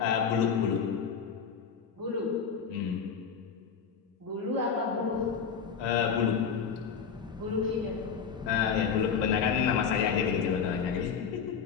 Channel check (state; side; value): quieter; right; 6.6 dB